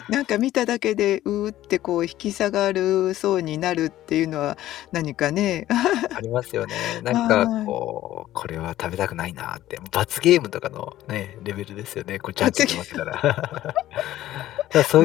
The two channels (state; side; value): quieter; right; 14.1 dB